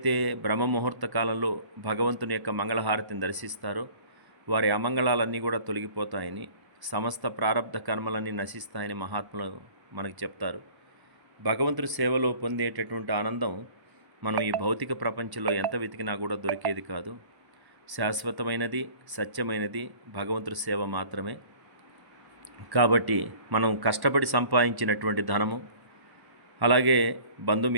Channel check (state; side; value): late; left; 1.1 ms